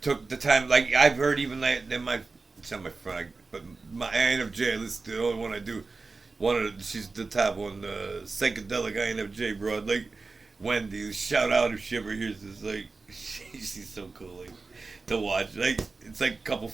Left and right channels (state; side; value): quieter; left; 3.9 dB